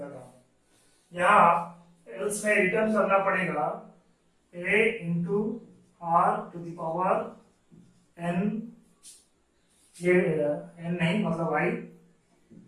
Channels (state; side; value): identical; both; correlation 1.00